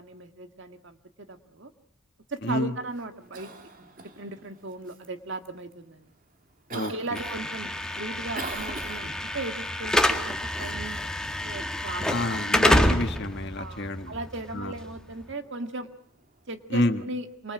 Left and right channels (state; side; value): normal; both; correlation 0.65